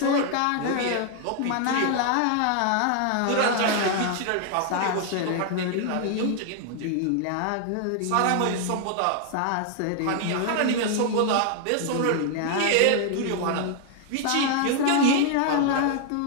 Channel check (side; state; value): both; different; correlation 0.00